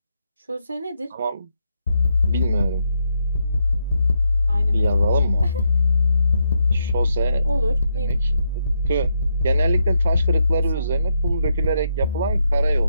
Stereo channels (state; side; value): inverted; both; correlation -0.79